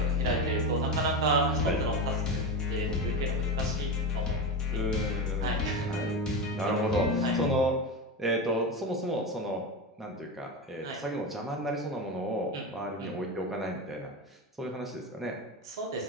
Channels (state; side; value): normal; both; correlation 0.19